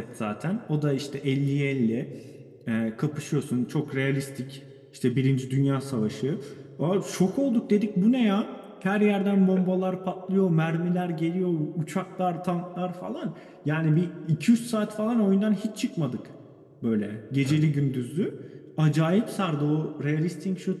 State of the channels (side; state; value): both; identical; correlation 1.00